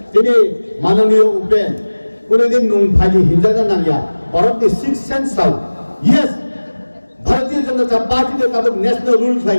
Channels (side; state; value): both; inverted; correlation -1.00